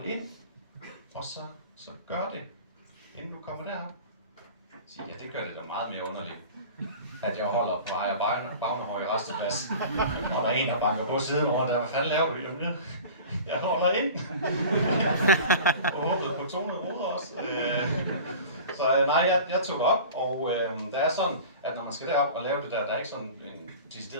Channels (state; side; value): inverted; both; correlation -0.39